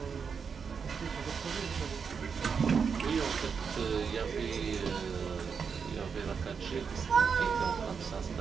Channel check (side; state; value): left; quieter; 6.1 dB